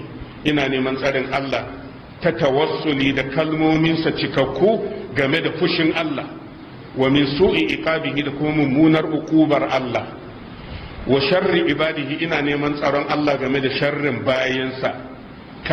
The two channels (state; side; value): identical; both; correlation 1.00